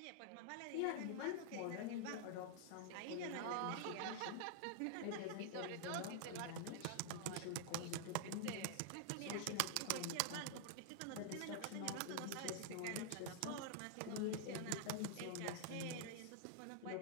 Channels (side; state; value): both; different; correlation -0.01